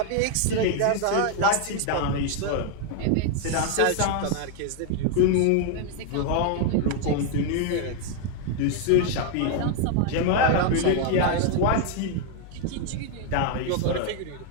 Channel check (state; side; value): different; both; correlation 0.00